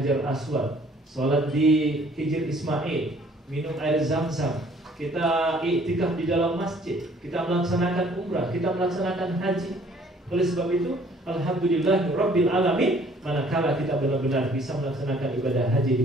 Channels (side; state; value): both; normal; correlation 0.58